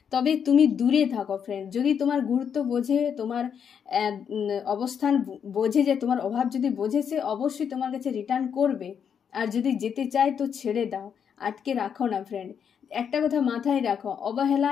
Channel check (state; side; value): quieter; right; 7.6 dB